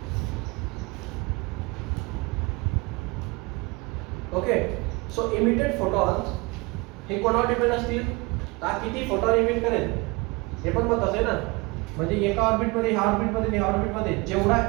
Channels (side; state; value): left; quieter; 26.0 dB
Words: Okay. So emitted photons हे कोणावर डिपेंड असतील, तर किती फोटॉन इमिट करेल हे पण महत्त्वाचं आहे ना. म्हणजे एका ऑर्बिट मध्ये ह्या ऑर्बिट मध्ये ह्या ऑर्बिट मध्ये जेवढा